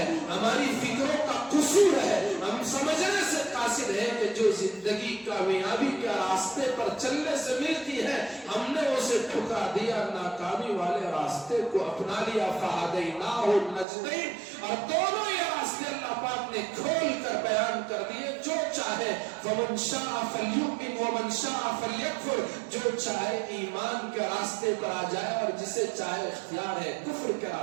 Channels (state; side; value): drops out; left; at 13.9 s